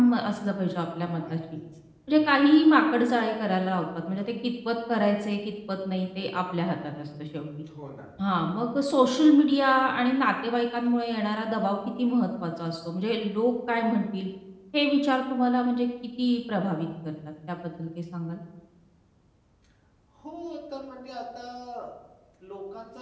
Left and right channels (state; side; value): identical; both; correlation 1.00